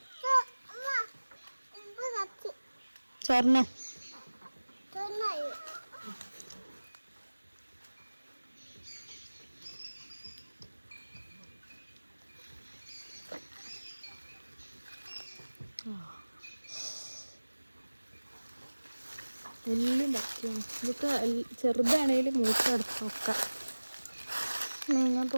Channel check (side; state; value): both; inverted; correlation -1.00